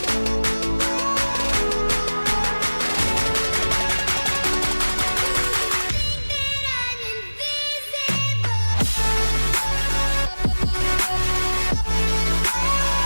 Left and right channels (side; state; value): both; inverted; correlation -1.00